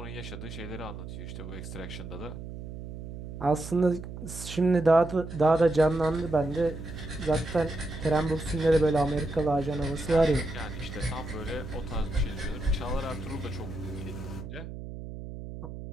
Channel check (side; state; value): right; noise; hum, 10 dB below the sound